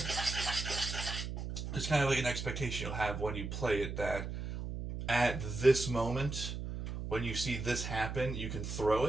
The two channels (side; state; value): right; noise; hum, 5 dB below the sound